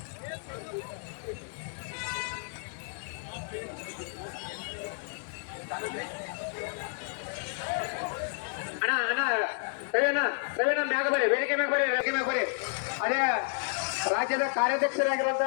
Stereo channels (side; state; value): right; silent; 57 dB below the other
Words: ಅಣ್ಣ ರವಿಯಣ್ಣ ಮ್ಯಾಗ ಬರ್ರಿ, ವೇದಿಕೆ ಮ್ಯಾಗ ಬರ್ರಿ. ಅದೇ ರಾಜ್ಯದ